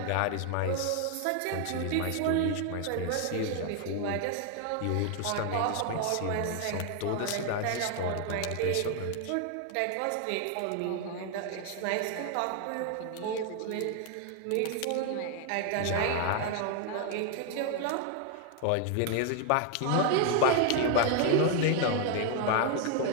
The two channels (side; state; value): both; different; correlation 0.00